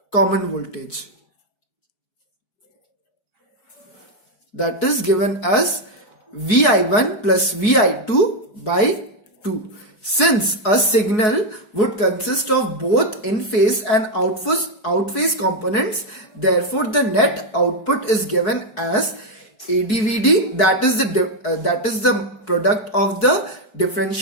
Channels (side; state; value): right; late; 4.7 ms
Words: common voltage, that is given as Vi1 plus Vi2 by 2. Since a signal would consist of both in-phase and out-phase components, therefore the net output is given as AdVd, that is the product of the